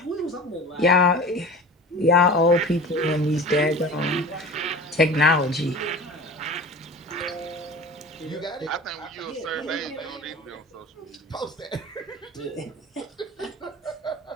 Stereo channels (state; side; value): normal; both; correlation 0.37